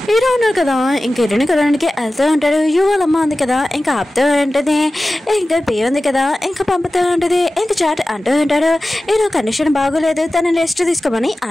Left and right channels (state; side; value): normal; both; correlation 0.96